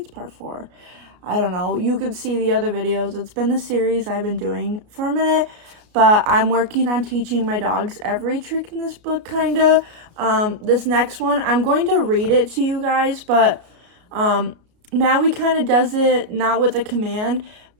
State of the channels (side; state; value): left; late; 33 ms